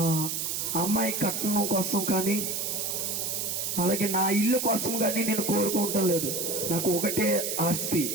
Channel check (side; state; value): right; noise; hiss, 1 dB below the sound